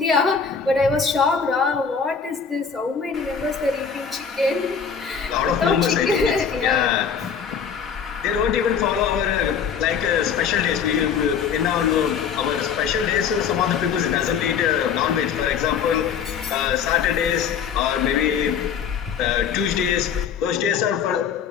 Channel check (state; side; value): quieter; right; 6.9 dB